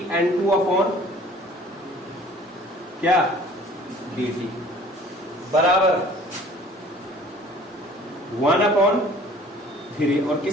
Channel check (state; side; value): normal; both; correlation 0.51